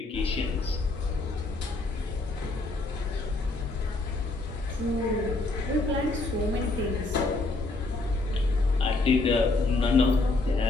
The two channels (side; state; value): right; quieter; 3.2 dB